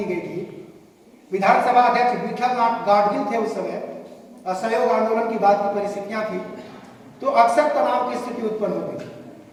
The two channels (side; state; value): both; identical; correlation 1.00